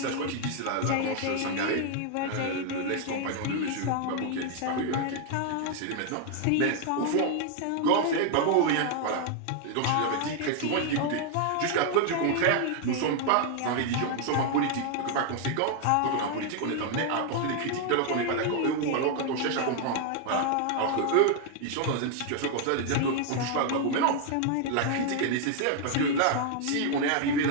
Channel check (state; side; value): different; both; correlation 0.00